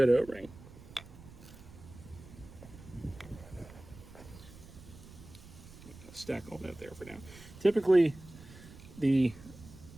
O-ring. Stack all that there for now. Typically, the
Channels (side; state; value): right; noise; rumble, 18 dB below the sound